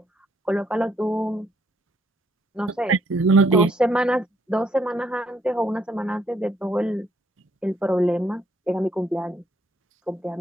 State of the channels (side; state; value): both; normal; correlation 0.70